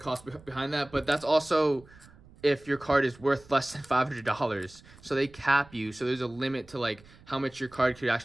behind that. But that's also if your card is worth less than $500. So they cap you, so there's a limit to like how much your card could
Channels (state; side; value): noise; right; rumble, 24 dB below the sound